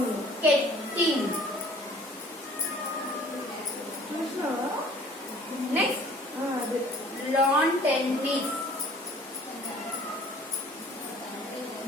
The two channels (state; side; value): normal; both; correlation 0.52